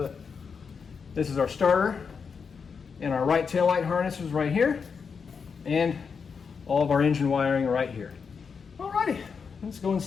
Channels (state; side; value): quieter; right; 5.8 dB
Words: this is our starter, and our right taillight harness is right here, and all of our engine wiring right here. Alrighty, let's go